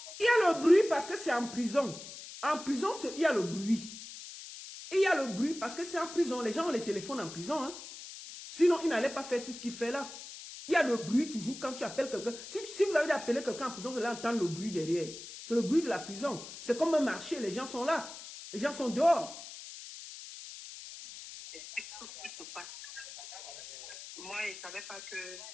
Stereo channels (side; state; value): left; noise; hiss, 13 dB below the sound